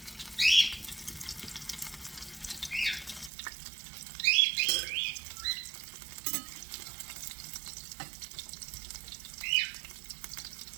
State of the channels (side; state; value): left; drops out; at 3.3 s